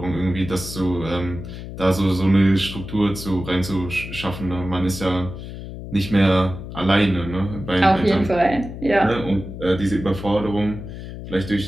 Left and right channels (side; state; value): left; noise; hum, 10 dB below the sound